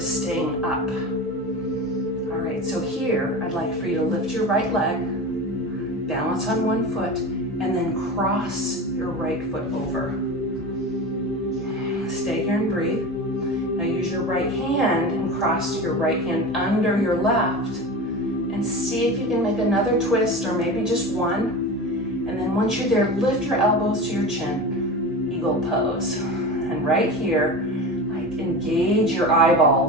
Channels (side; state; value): both; normal; correlation 0.29